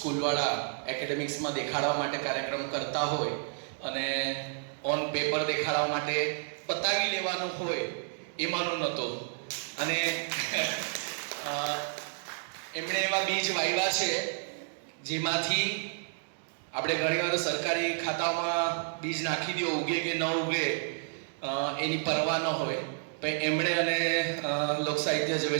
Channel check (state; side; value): silent; left; digital silence